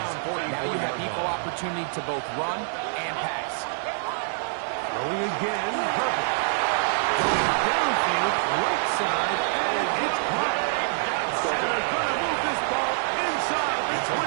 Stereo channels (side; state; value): left; silent; 59 dB below the other